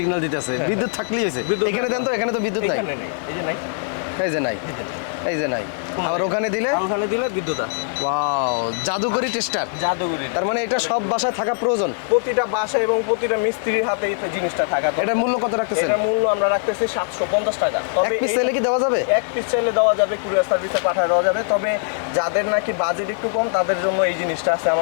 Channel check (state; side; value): silent; right; digital silence